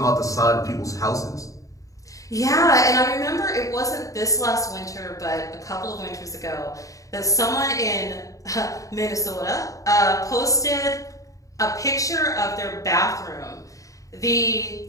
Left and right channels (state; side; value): late; right; 0.16 ms